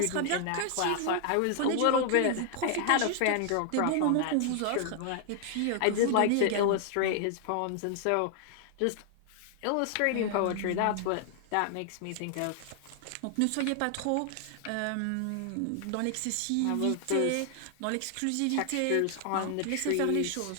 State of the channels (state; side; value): different; both; correlation 0.00